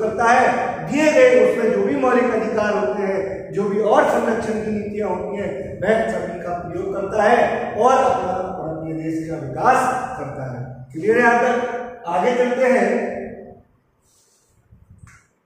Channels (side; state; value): both; identical; correlation 1.00